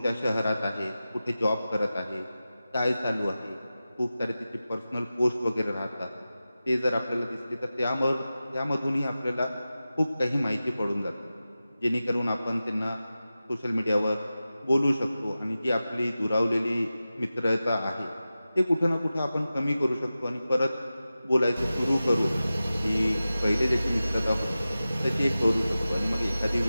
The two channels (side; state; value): both; inverted; correlation -0.95